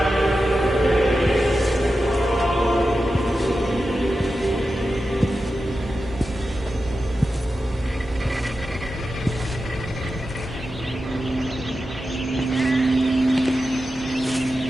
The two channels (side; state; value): both; normal; correlation 0.91